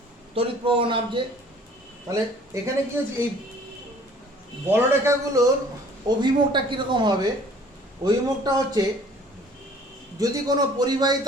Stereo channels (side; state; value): both; normal; correlation 0.54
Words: তড়িৎ প্রবাহ নামছে, তাহলে এখানে কি হচ্ছে, এই বলরেখাগুলোর অভিমুখটা কীরকম হবে, অভিমুখটা হচ্ছে যদি কোনো পরিবাহী